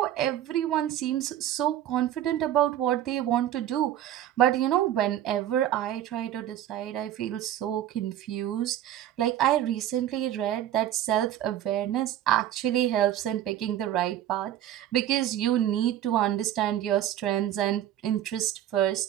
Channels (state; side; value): quieter; left; 11.8 dB